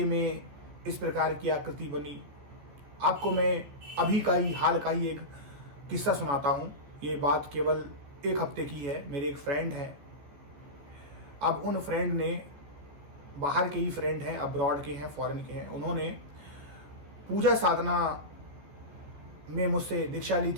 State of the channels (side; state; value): left; late; 14 ms